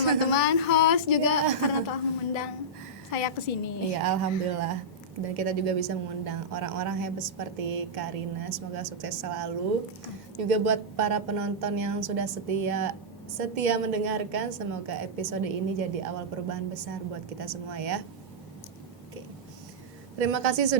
teman-teman host juga karena telah mengundang saya ke sini. Iya, alhamdulillah. Dan kita juga bisa mengundang orang-orang hebat seperti Karina. Semoga sukses selalu. Juga buat para penonton yang sudah setia mendengarkan, semoga episode ini jadi awal perubahan besar buat kita semua ya. Oke. Terima kasih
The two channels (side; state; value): both; normal; correlation -0.12